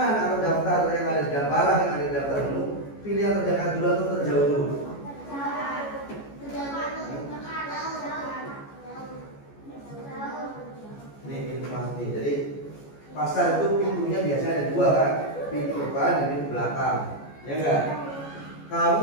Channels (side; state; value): right; late; 14 ms